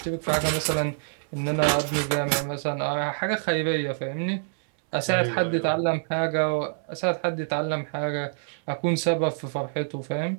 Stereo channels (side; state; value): left; silent; 61 dB below the other